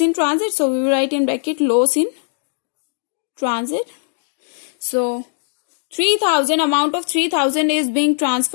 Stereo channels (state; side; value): silent; right; digital silence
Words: transit, so we will write in bracket loss in transit. So 3,000, amount of 3,000 is being